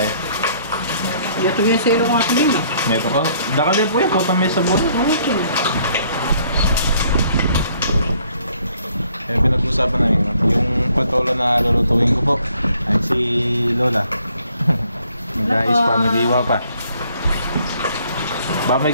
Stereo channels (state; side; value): inverted; both; correlation -0.64